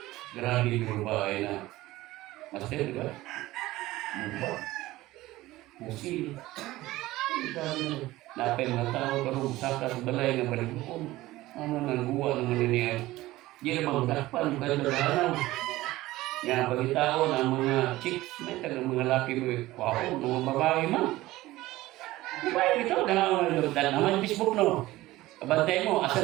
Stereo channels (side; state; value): left; quieter; 17.5 dB